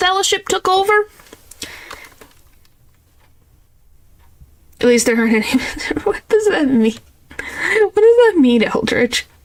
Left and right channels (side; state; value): both; identical; correlation 1.00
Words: took over? At least there aren't any... What does that mean? What does that mean, Eldritch?